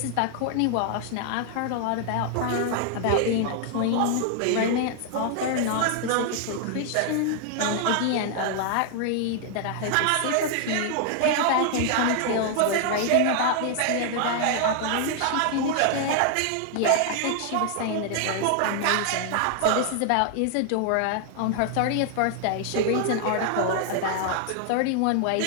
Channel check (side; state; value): both; different; correlation 0.00